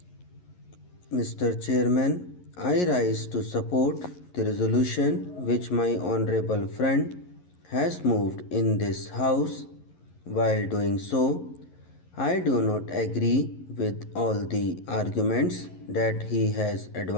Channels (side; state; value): right; late; 11 ms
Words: Mr. Chairman, I rise to support the resolution which my honorable friend has moved in this House. While doing so, I do not agree with all the arguments that he has